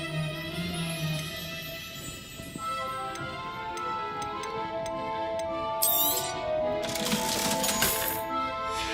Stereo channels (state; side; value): identical; both; correlation 1.00